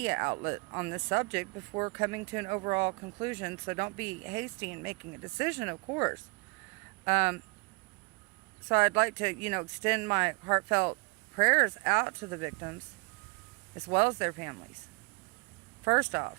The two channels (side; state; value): left; quieter; 28.9 dB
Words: outlet on this subject before coming to an overall conclusion. So don't be hasty in making a decision, of course. So I'd like to, extend my heartfelt prayers out to the victims as well as their families. First